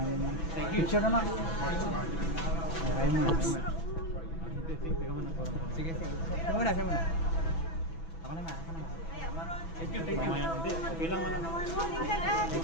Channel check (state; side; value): late; right; 6.1 ms